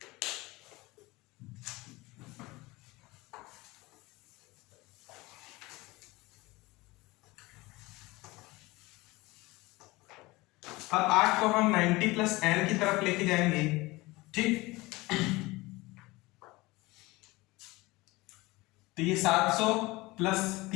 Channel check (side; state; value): right; quieter; 21.6 dB